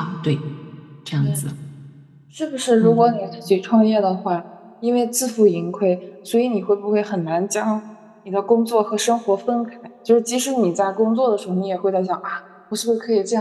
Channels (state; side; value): identical; both; correlation 1.00